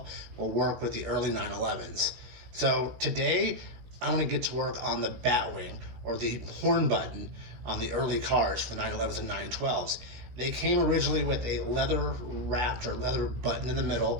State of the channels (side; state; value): left; late; 17 ms